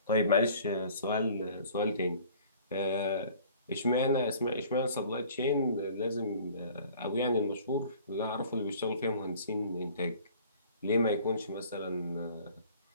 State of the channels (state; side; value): inverted; both; correlation -0.50